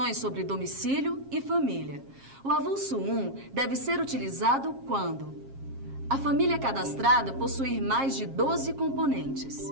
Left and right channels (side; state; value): left; late; 7.4 ms